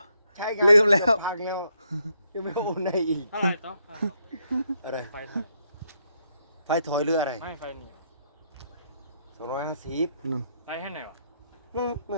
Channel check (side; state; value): both; inverted; correlation -0.75